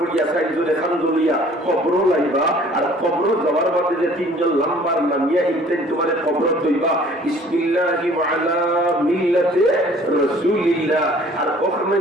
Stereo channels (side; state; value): both; normal; correlation 0.53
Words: সাইজরে খান দলিয়া কবর লাইবা, আর কবর যাওয়ার বাদে যে 3 জন লাম্বার নামিয়া ইনতেন তোমার কবর দইবা বিসমিল্লাহি ওয়া আলা মিল্লাতি রাসূলিল্লাহ, আর ওখানে